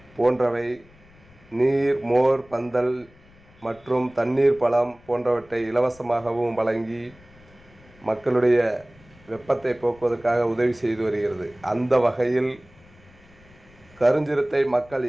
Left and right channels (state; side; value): noise; left; rumble, 26 dB below the sound